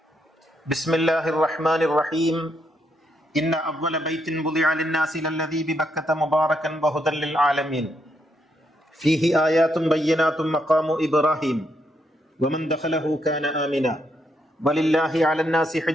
بسم الله الرحمن الرحيم. إن أول بيت وضع للناس للذي ببكة مباركا وهدى للعالمين فيه آيات بينات مقام إبراهيم ومن دخله كان آمنا ولله على الناس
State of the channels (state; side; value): normal; both; correlation 0.77